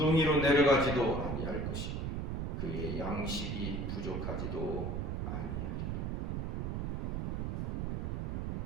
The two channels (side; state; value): right; noise; rumble, 1 dB below the sound